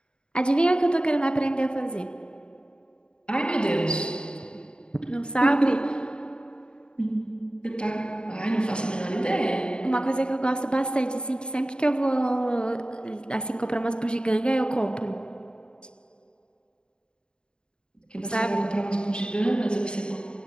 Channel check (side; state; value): right; late; 0.051 ms